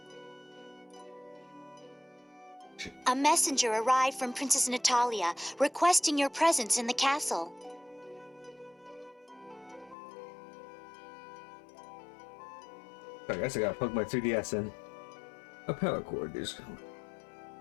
A messenger arrived from Princess Natalia, requesting your presence in the castle. I guess I gotta plug my 3DS in. A power cord is.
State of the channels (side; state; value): right; drops out; at 10.0 s